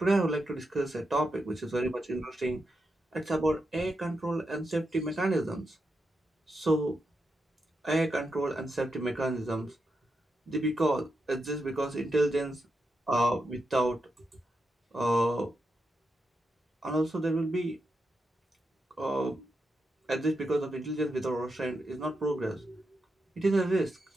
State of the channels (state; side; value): normal; both; correlation 0.85